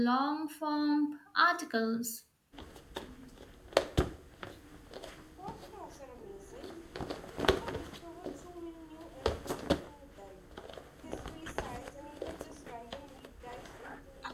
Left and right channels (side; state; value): both; identical; correlation 1.00